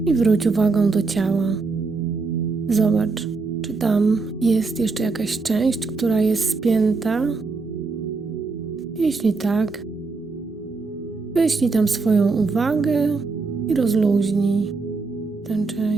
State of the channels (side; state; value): left; quieter; 4.1 dB